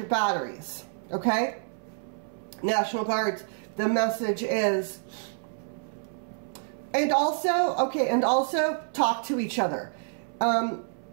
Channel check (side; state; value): left; silent; 59 dB below the other